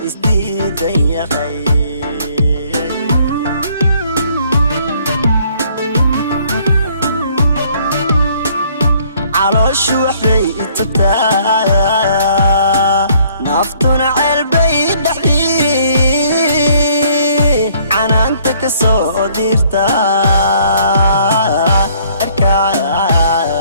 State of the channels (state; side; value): inverted; both; correlation -0.62